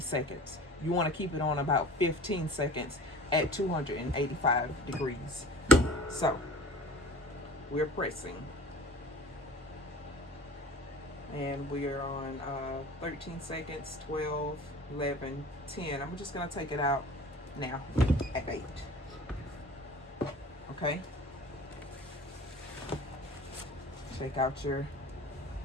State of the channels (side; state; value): both; normal; correlation 0.41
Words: You want to keep it on about 15 seconds at 285 degrees. So we're pressing. And we're on 13 seconds, 12, 11, 10. I'm just going to take it out now at 8. Okay? Take out your,